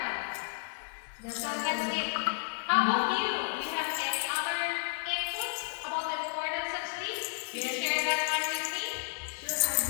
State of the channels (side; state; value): right; silent; digital silence